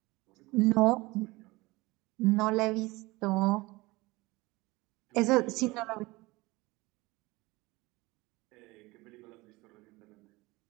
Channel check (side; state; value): left; quieter; 21.9 dB